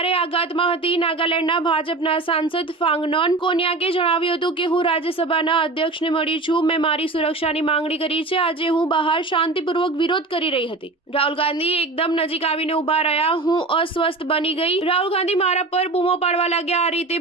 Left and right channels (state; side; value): quieter; left; 3.3 dB